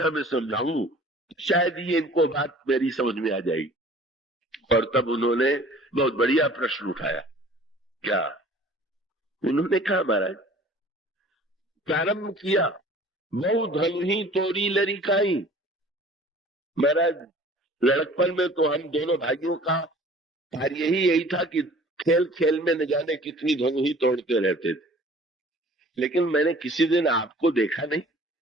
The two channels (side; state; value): both; normal; correlation 0.49